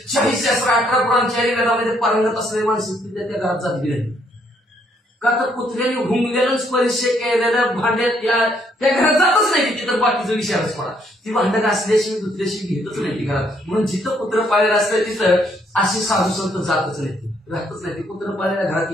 शाहीशास्त्र 18 पुराणच्या वेदामध्ये पारंगत असलेले माणसं त्या घरात जात गेले. का तर कुत्र्याने घुंगलेलं स्पर्श केलेलं भांड्यात त्या घरात जातच नाही. तिथं बाकीचा विषयच पडा, ती भांड घासल्याशिवाय दुसऱ्याशी घेतच नाही ती घरात. म्हणून जिथं कुत्र पाळलेलं असतं तिथं अशी साधू संत जातच नाही, राहतच नाही. ती कुत्र पाळलेल्या घरात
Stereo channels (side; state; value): both; normal; correlation 0.69